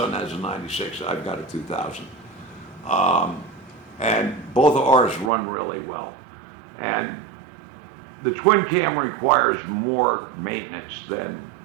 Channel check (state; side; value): drops out; left; at 5.3 s